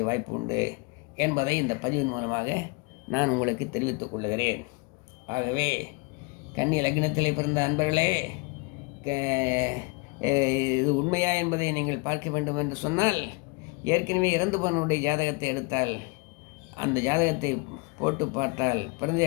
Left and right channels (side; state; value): right; quieter; 28.1 dB